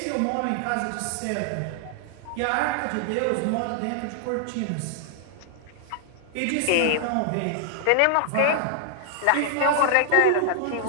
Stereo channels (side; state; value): both; different; correlation -0.01